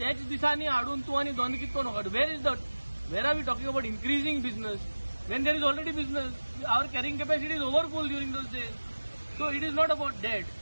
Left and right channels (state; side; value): inverted; both; correlation -1.00